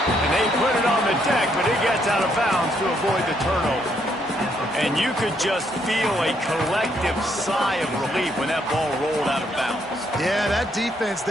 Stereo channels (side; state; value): both; normal; correlation 0.73